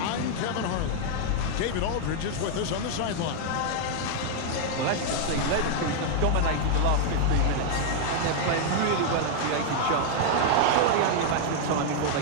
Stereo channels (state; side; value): different; both; correlation 0.00